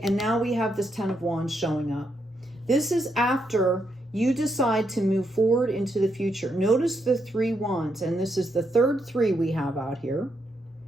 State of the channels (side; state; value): both; normal; correlation 0.79